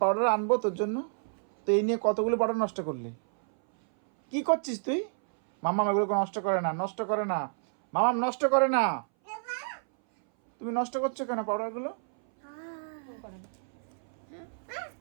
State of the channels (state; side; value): silent; left; 58 dB below the other